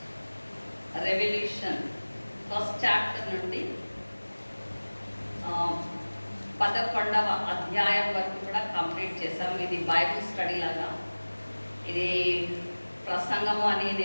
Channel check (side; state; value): both; inverted; correlation -1.00